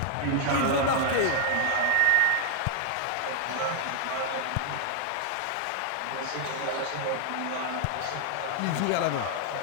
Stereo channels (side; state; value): both; different; correlation 0.00